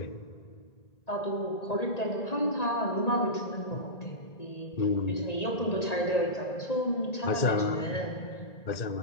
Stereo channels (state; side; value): late; right; 1.9 ms